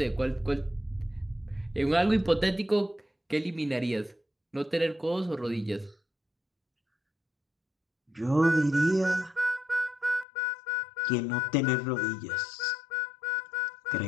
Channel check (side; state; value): right; drops out; at 10.2 s